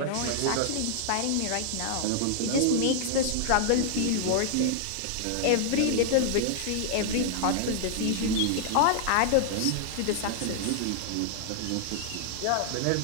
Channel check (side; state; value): both; different; correlation 0.00